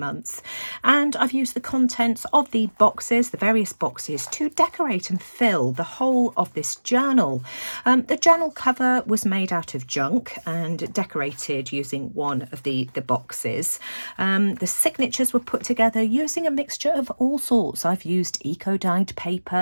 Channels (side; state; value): both; inverted; correlation -1.00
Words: And I've used the contents of the various boxes, to decorate and fill the whole of this journal. The journal cover was made out of junk and decorated using one of the boxes. The signatures were put together using a mixture of all sorts. I've used eco-dyed